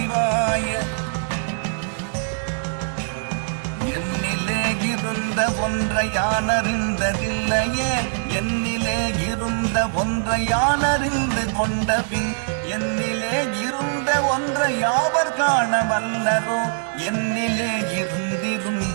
என்னிலே இருந்த ஒன்றை யான் அறிந்ததில்லையே, என்னிலே இருந்த ஒன்றை யான் அறிந்து கொண்ட பின் என்னிலே இருந்த ஒன்றை யாவர் காண வல்லரோ, என்னிலே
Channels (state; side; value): silent; left; 64 dB below the other